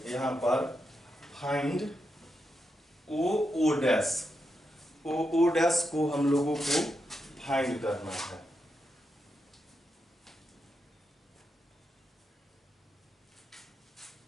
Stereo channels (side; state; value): both; normal; correlation 0.85